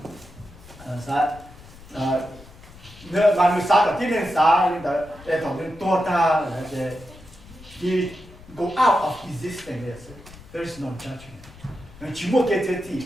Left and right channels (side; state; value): left; noise; rumble, 20 dB below the sound